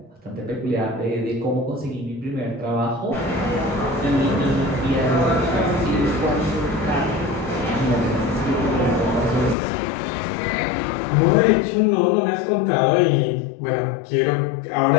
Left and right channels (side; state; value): right; drops out; at 9.6 s